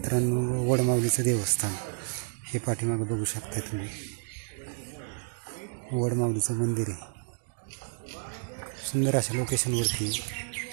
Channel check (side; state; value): left; silent; digital silence